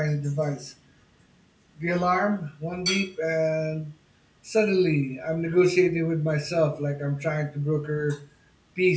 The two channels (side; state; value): both; identical; correlation 1.00